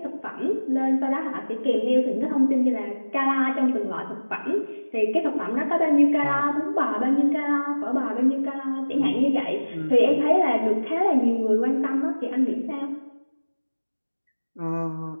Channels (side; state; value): both; inverted; correlation -1.00